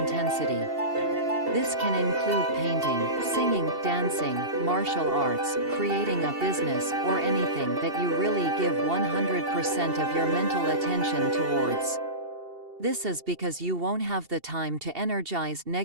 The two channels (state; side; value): late; left; 2.7 ms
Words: This can include painting, singing, dancing, martial arts, creating a business, or anything that you really give 100% of your mental attention towards. This is because you won't have the time to energize